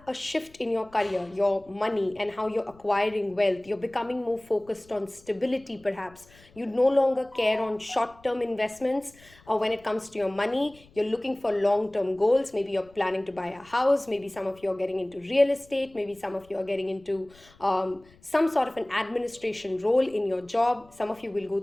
a shift in your career, your money, and how you're acquiring wealth. You're becoming more focused on stability, perhaps. You no longer care on short term investments when it comes to your money. You're looking for long term goals. Maybe you're planning to buy a house. Maybe some of you are getting into real estate. Maybe some of you are getting into some sort of an administration role in your job. Some of you will go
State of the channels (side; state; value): left; noise; rumble, 27 dB below the sound